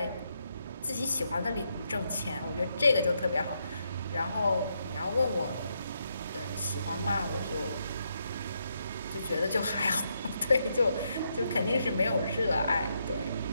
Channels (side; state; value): both; inverted; correlation -0.79